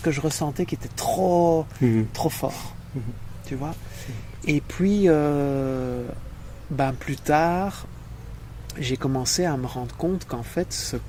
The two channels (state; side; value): identical; both; correlation 1.00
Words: je ressentais qui était trop fort, tu vois. Et puis, plus tard, j'ai commencé à me rendre compte qu'en fait, ce